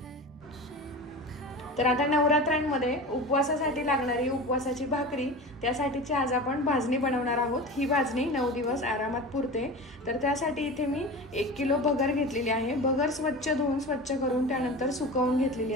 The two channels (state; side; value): normal; both; correlation 0.31